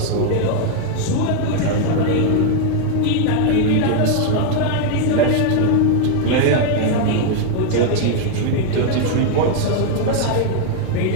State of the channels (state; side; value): different; both; correlation 0.00